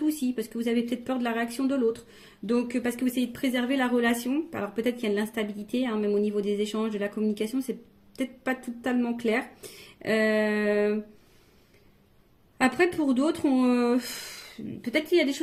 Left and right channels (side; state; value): both; identical; correlation 1.00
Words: aussi, parce que vous avez peut-être peur de la réaction de l'autre. Donc, parce que vous essayez de préserver la relation. Alors, peut-être qu'il y a de l'instabilité, hein, même au niveau des échanges, de la communication, c'est peut-être pas totalement clair. Euh, Après, pour d'autres, peut-être qu'il y a des